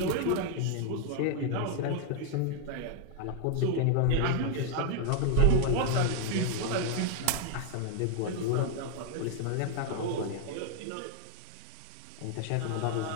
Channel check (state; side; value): different; both; correlation 0.00